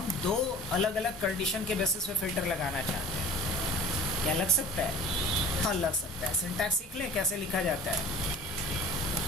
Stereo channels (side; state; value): both; normal; correlation 0.43